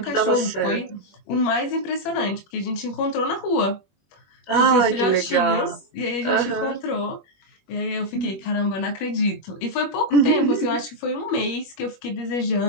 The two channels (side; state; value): right; late; 21 ms